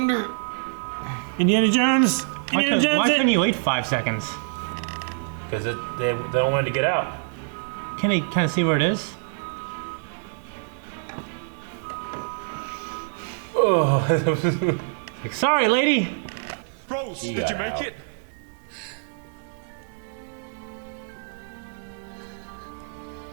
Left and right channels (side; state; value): left; silent; 58 dB below the other